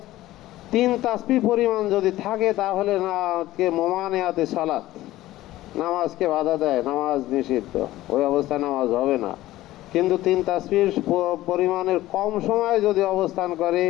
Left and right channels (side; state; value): right; quieter; 15.9 dB